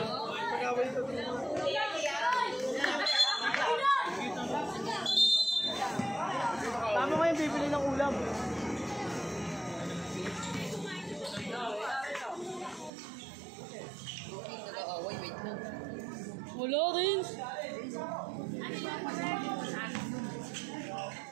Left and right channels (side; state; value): left; drops out; at 12.9 s